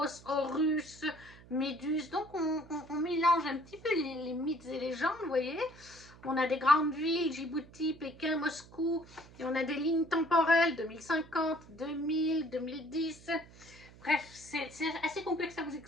horus, méduse. Donc on mélange un petit peu les mythes et légendes, vous voyez. On a des grandes villes, Djibouti, Pékin, Moscou, et on a des lignes temporelles, 2050, 2000, 2010. Bref, c'est assez complexe à vous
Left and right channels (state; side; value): noise; right; hum, 21 dB below the sound